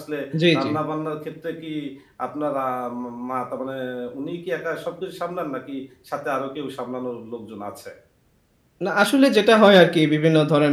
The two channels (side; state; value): both; identical; correlation 1.00